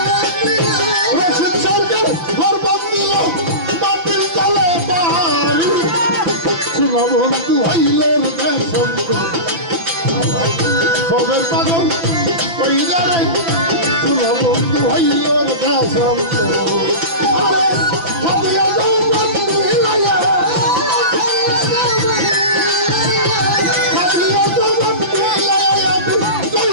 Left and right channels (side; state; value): left; late; 5.9 ms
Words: রশিদ সরকার ঘর বাঁধিল মাটির তলে বাড়ি সোনা বন্ধু হইল রে দেশান্ত খবর পাগল কইরা রে সোনা বন্ধু হইল রে দেশান্ত আরে ভাবিয়া যাও বন্ধু হিলাইয়া ভাবিয়া যাও বন্ধু হিলাইয়া আমি